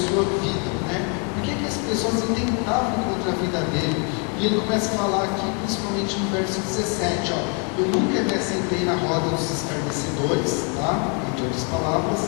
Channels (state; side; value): quieter; right; 37.8 dB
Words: vida, né? Por que as pessoas intentavam contra a vida dele? E ele começa a falar aqui, principalmente no verso 17, ó, eu nunca me assentei na roda dos escarnecedores, tá? Entre outras palavras,